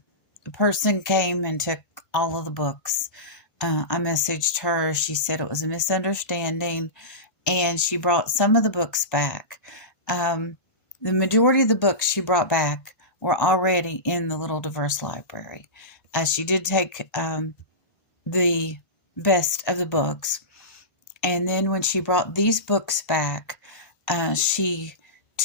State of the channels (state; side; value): late; right; 1.5 ms